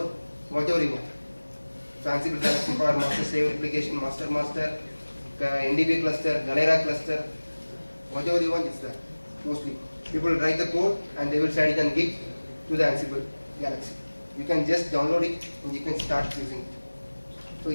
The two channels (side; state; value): both; inverted; correlation -1.00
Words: whatever you want. So Ansible Galaxy for master slave replication, master, NDB cluster, Galera cluster, whatever you want is there. Mostly people write the code and they will share it on Git to the Ansible Galaxy. You can just download it and you can start using it. So